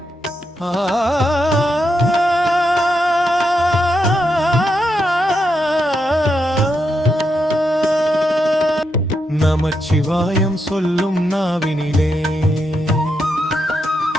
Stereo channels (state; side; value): normal; both; correlation 0.83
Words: நமச்சிவாயம் சொல்லும் நாவினிலே,